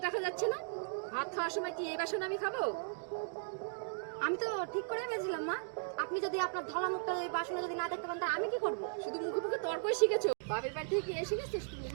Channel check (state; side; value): silent; left; digital silence